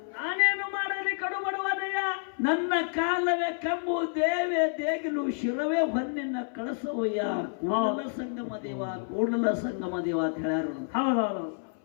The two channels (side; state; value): right; silent; 57 dB below the other